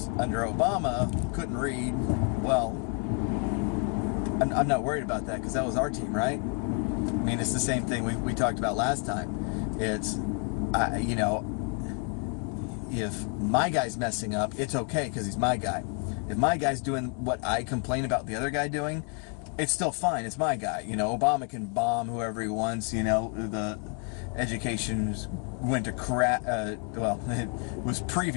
under Obama couldn't read, well, I'm not worried about that, because that was our team, right? I mean, it's the same thing we talked about last time. It's, you know, if my guy's messing up, it's okay because he's my guy. If my guy's doing what I complain about the other guy doing, it's still fine. It's my guy. You know, Obama can bomb whoever he wants. You know, the education went to crap. Well, it was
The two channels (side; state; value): right; quieter; 39.4 dB